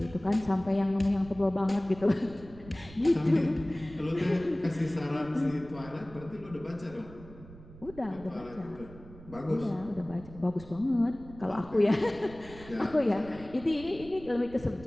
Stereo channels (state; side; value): noise; right; rumble, 18 dB below the sound